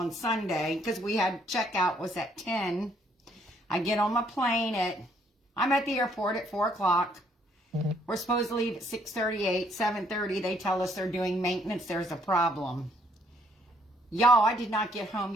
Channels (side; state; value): both; normal; correlation 0.67